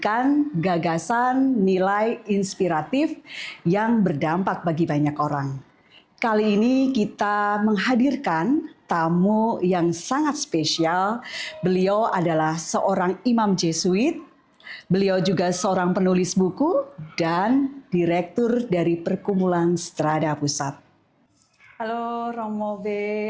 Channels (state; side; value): identical; both; correlation 1.00